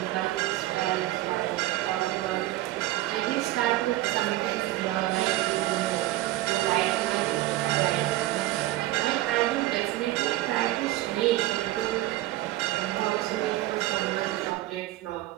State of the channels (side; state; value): left; quieter; 16.2 dB